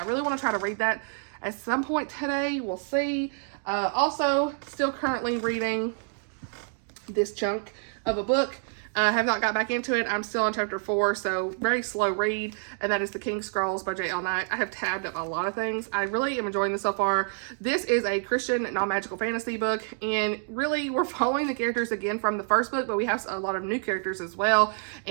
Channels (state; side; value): silent; left; 60 dB below the other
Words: really want to try to read that at some point today. We'll see. Also, still currently reading this chunk of a book. I have not got back into it. I'm still on chapter 4, so very slow read, and that is The King's Scrolls by Jaye. I have tabbed up a lot of things. I really am enjoying this so far. This is a Christian non-magical fantasy book, and really we're following the characters again from the first book, but we have a lot of new characters as well,